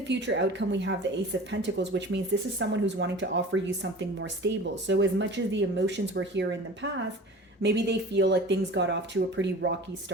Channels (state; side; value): normal; both; correlation 0.40